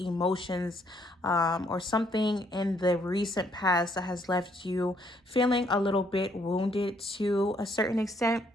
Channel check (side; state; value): both; normal; correlation 0.69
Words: or something in the recent past that has left you feeling a little bit wounded to a certain extent.